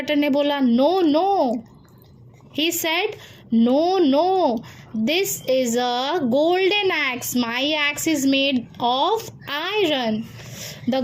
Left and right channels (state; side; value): identical; both; correlation 1.00